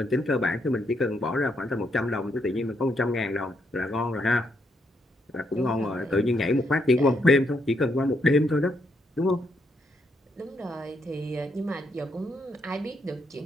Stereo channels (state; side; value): normal; both; correlation 0.77